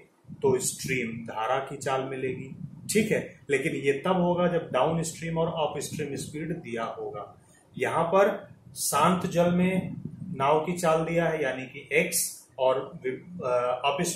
तो स्ट्रीम धारा की चाल मिलेगी। ठीक है, लेकिन ये तब होगा जब डाउन स्ट्रीम और अप स्ट्रीम स्पीड दिया होगा। यहां पर शांत जल में नाव की चाल दिया है यानी कि x, और अप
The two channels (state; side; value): identical; both; correlation 1.00